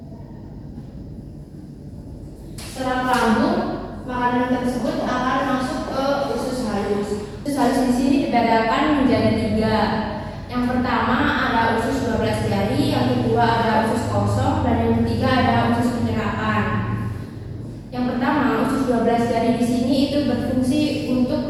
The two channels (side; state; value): both; identical; correlation 1.00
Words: Setelah lambung, makanan tersebut akan masuk ke usus halus. Usus halus di sini dibedakan menjadi 3. Yang pertama ada usus 12 jari, yang kedua ada usus kosong, dan yang ketiga ada usus penyerapan. Yang pertama, usus 12 jari di sini itu berfungsi untuk